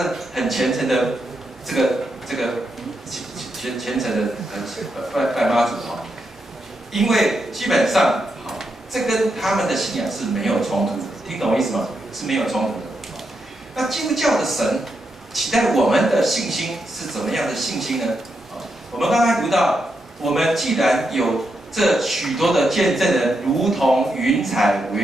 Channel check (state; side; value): normal; both; correlation 0.83